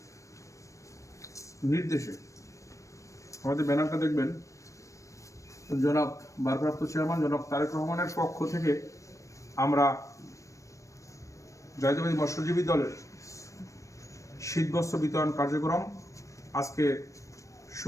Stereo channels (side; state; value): right; late; 0.15 ms